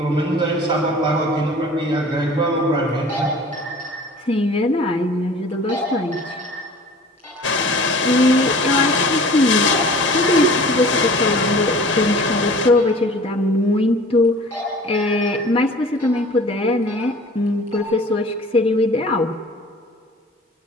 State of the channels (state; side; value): normal; both; correlation 0.45